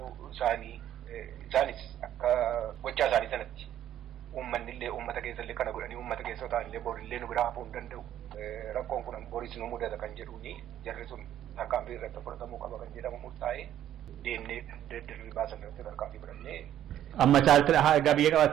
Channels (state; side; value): quieter; left; 11.5 dB